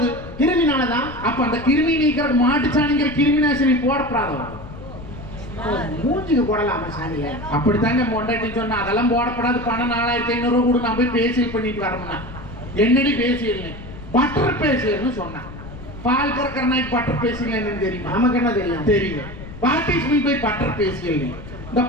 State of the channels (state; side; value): noise; left; rumble, 14 dB below the sound